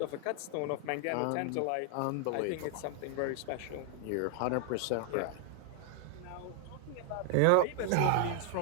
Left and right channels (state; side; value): different; both; correlation 0.00